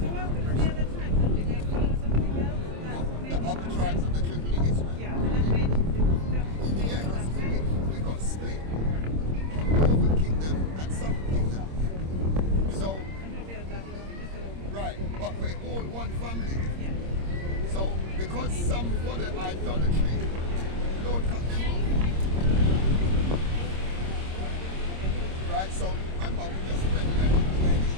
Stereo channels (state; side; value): late; left; 26 ms